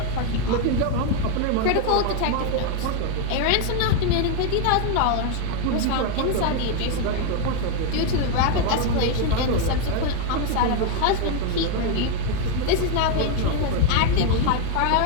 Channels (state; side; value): different; both; correlation 0.01